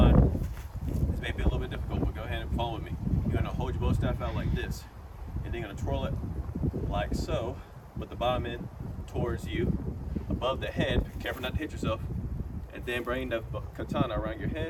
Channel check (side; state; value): both; identical; correlation 1.00